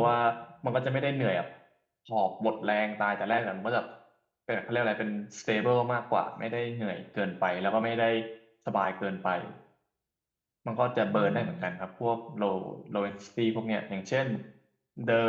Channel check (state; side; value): identical; both; correlation 1.00